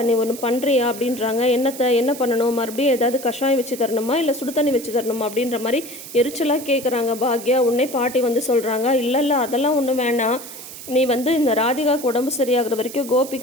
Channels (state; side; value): noise; right; hiss, 13 dB below the sound